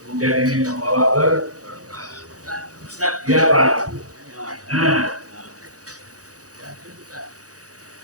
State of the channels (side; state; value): left; late; 0.67 ms